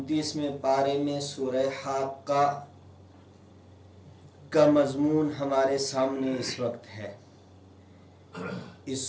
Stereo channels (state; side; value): identical; both; correlation 1.00